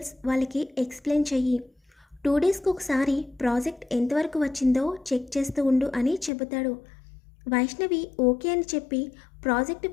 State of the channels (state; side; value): drops out; right; at 6.3 s